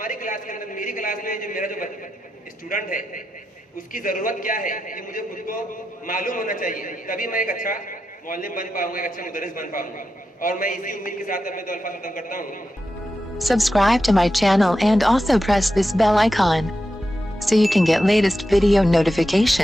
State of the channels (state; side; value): normal; both; correlation 0.89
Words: क्लास के अंदर, मेरी क्लास में जो मेरा जो स्टूडेंट है, उसकी जरूरत क्या है, ये मुझे खुद को मालूम होना चाहिए, तभी मैं एक अच्छा मुअल्लिम बन पाऊंगा, एक अच्छा मुदर्रिस बन पाऊंगा। और मैं इसी उम्मीद के साथ अपने 2 अल्फाज खत्म करता हूँ। Subscribe to my channel and also press this bell icon so you can get latest video